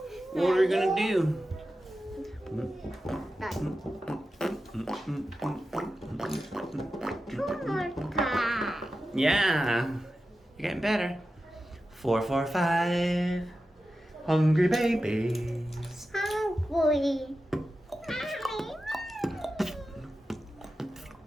What are we gonna do? Yeah, you're getting better. 4, 4, 5. Hungry babies. Hungry.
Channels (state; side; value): normal; both; correlation 0.92